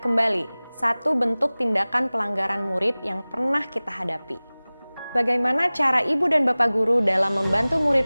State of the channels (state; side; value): inverted; both; correlation -0.99